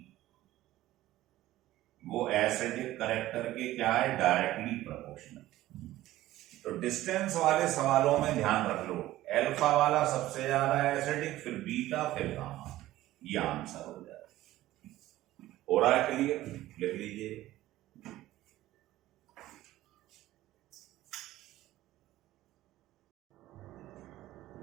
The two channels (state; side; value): quieter; left; 15.5 dB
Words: वो एसिडिक कैरेक्टर के क्या है, डायरेक्टली प्रोपोर्शनल। तो डिस्टेंस वाले सवालों में ध्यान रख लो, अल्फा वाला सबसे ज्यादा एसिडिक, फिर बीटा, फिर गामा, ये आंसर हो जाएगा। हो रहा है क्लियर? लिख लीजिए।